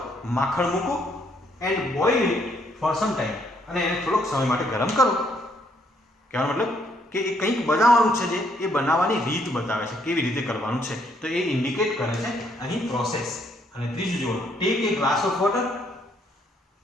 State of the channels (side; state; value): both; normal; correlation 0.70